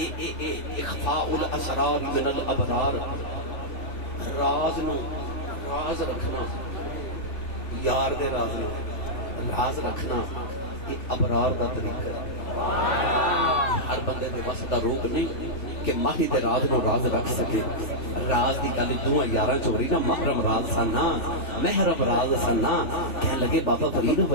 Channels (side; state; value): right; late; 3.1 ms